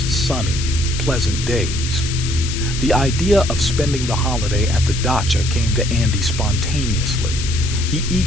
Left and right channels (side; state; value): left; noise; hiss, 7 dB below the sound